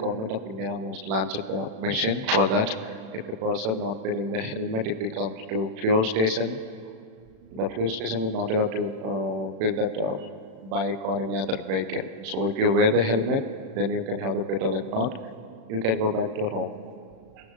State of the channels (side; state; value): left; late; 36 ms